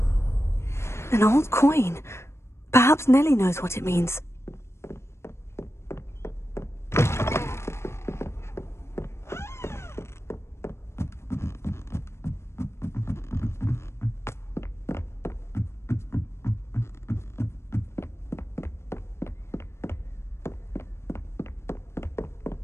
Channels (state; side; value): late; right; 0.13 ms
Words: An old coin. Perhaps Nellie knows what it means.